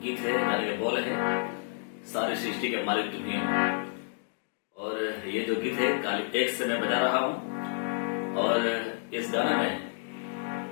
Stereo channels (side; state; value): right; silent; digital silence